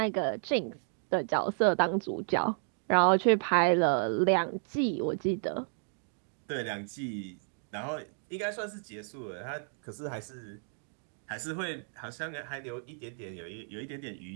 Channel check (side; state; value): left; silent; digital silence